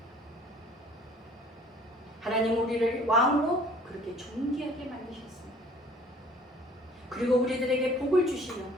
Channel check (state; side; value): normal; both; correlation 0.53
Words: 하나님 우리를 왕으로 그렇게 존귀하게 만드셨습니다. 그리고 우리들에게 복을 주시며